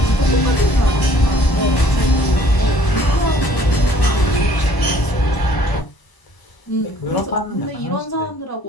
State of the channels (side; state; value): right; late; 1.0 ms